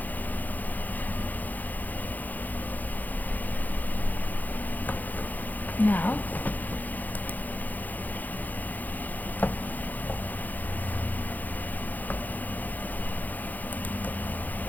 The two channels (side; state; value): right; late; 0.083 ms